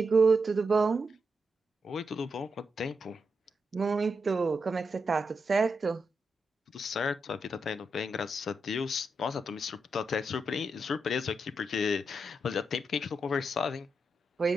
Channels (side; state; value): both; normal; correlation 0.84